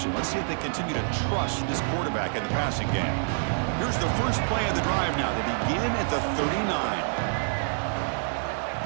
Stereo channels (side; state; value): left; silent; digital silence